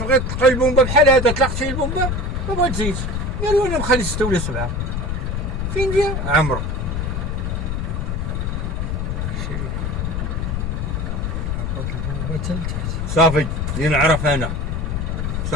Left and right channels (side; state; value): left; noise; rumble, 1 dB below the sound